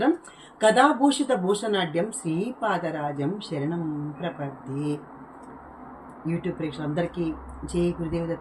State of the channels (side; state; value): both; identical; correlation 1.00